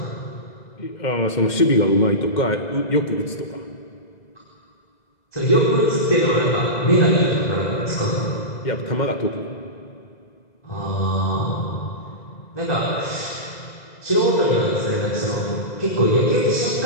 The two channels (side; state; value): right; late; 2.0 ms